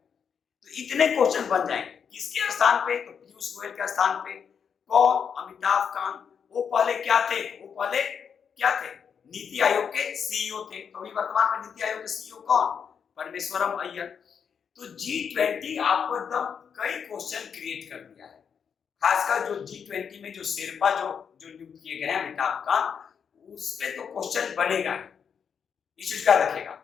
इतने क्वेश्चन बन जाएंगे। किसके स्थान पे, तो पीयूष गोयल के स्थान पे। कौन, अमिताभ कांत। वो पहले क्या थे, नीति आयोग के CEO थे। तो अभी वर्तमान में नीति आयोग के CEO कौन, परमेश्वरम अय्यर। तो G20 आपको एकदम कई क्वेश्चन क्रिएट कर दिया है। खासकर जो G20 में जो शेरपा जो नियुक्त किए गए हैं अमिताभ कांत, उस पे तो क्वेश्चन बनेगा, इस चीज का रखेगा।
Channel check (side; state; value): right; quieter; 7.0 dB